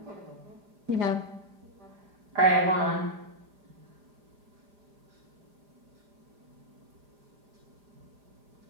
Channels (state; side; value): late; left; 4.9 ms